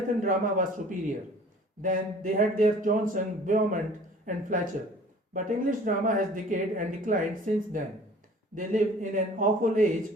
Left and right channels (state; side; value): normal; both; correlation 0.49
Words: drama was superior. Then they had their Johnson, Beaumont, and Fletcher. But English drama has decayed and declined since then. They live in an awful age